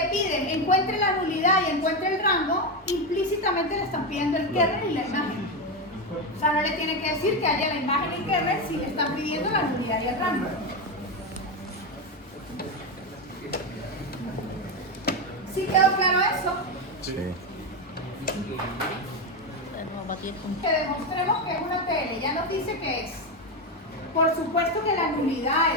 piden encuentre la nulidad y encuentre el rango, implícitamente le están pidiendo el kernel y la imagen. O sea, no le tienen que decir que haya la imagen y el kernel si le están pidiendo la nulidad y el rango. ¿Sí quedó claro eso? Sí. Que demostremos que es una TL. Ya nos dice que es. Por supuesto que la nulidad,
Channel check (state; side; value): normal; both; correlation 0.11